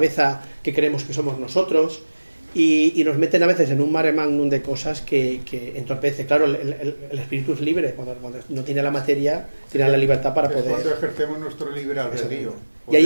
que creemos que somos nosotros y nos meten a veces en un mare magnum de cosas que entorpece. Claro, el espíritu es libre, cuando no tiene la materia, tiene la libertad para poder... Cuando ejercemos nuestro libre albedrío. Y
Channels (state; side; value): inverted; both; correlation -1.00